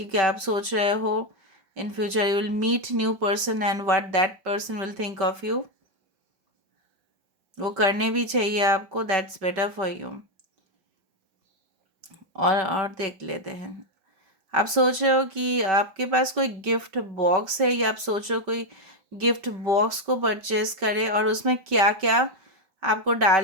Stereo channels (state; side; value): late; left; 5.2 ms